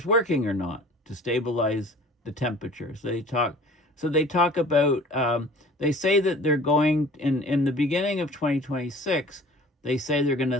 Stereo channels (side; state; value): both; normal; correlation 0.46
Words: working or not to stabilize the temperature. So they talk about, they say that they're going, in the beginning of 2026, they say they're going to